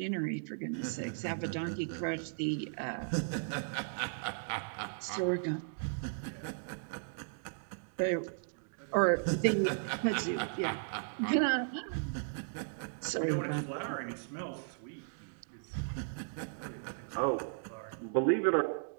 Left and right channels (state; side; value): silent; left; digital silence